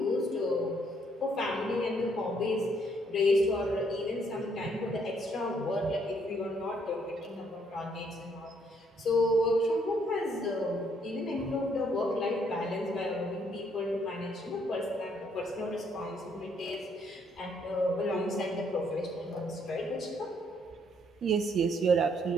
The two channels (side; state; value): both; normal; correlation 0.69